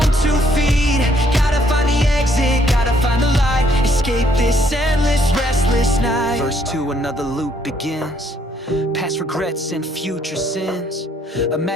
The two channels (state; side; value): normal; both; correlation 0.67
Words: 2 feet. Gotta find the exit, gotta find the light, escape this endless, restless night. Verse 2, another loop begins, past regrets and future sins.